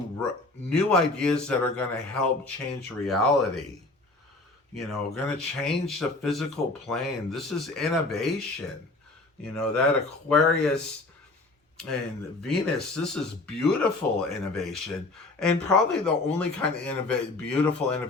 new ideas that are going to help change reality. Going to change the physical plane. This is innovation. That Aquarius and Venus, this is beautiful innovation, and probably the only kind of beautiful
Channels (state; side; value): quieter; right; 3.2 dB